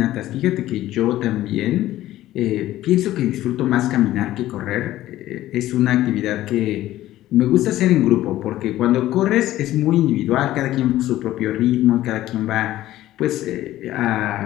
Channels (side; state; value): right; quieter; 14.7 dB